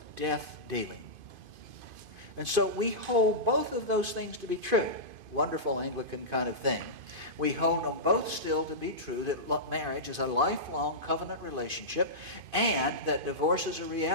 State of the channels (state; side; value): late; left; 2.5 ms